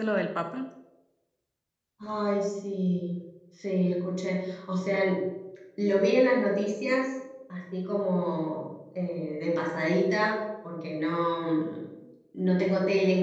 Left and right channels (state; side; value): identical; both; correlation 1.00